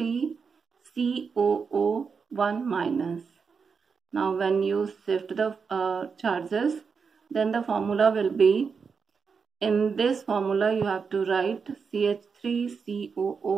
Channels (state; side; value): quieter; left; 5.6 dB